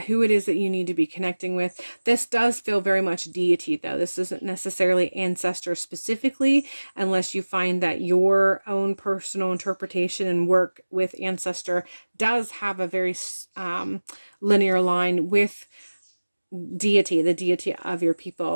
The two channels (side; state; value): both; inverted; correlation -1.00